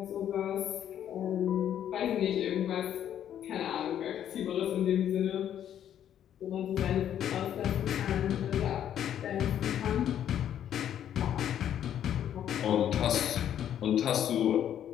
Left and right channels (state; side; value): quieter; right; 10.2 dB